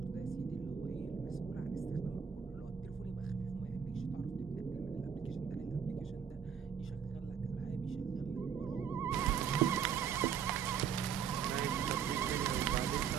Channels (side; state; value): left; quieter; 7.4 dB